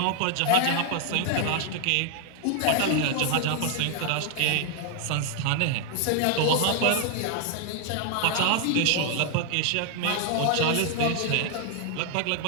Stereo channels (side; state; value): both; different; correlation 0.00